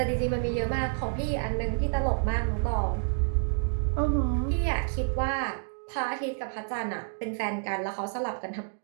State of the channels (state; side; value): silent; left; digital silence